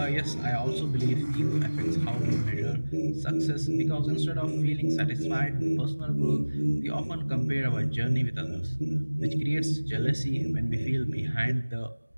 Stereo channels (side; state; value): both; inverted; correlation -1.00